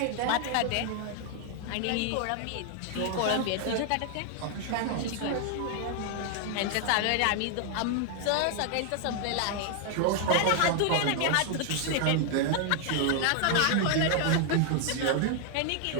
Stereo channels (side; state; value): both; different; correlation 0.00